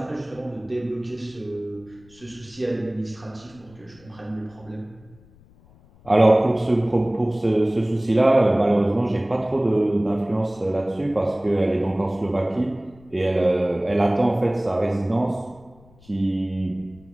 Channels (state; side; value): noise; left; rumble, 26 dB below the sound